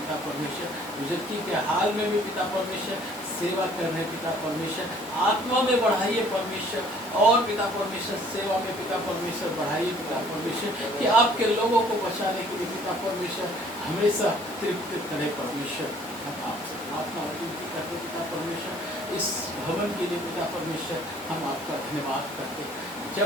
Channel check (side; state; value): both; normal; correlation 0.57